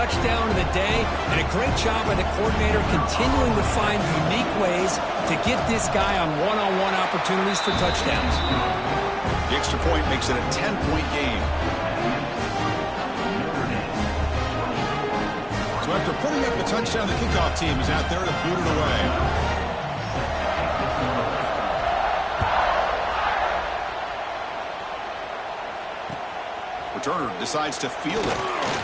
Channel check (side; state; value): both; identical; correlation 1.00